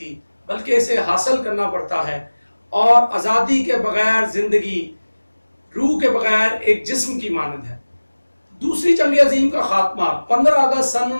بلکہ اسے حاصل کرنا پڑتا ہے، اور آزادی کے بغیر زندگی روح کے بغیر ایک جسم کی مانند ہے۔ دوسری جنگ عظیم کا خاتمہ 15 اگست سن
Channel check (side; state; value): both; inverted; correlation -1.00